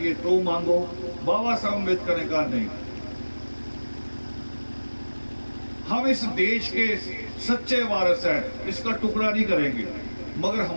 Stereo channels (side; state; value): both; inverted; correlation -1.00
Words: तो मांगो। बाबा साहब अम्बेडकर ने कहा नहीं, हम इस देश के सच्चे वारिस हैं, इसका टुकड़ा नहीं करेंगे, मगर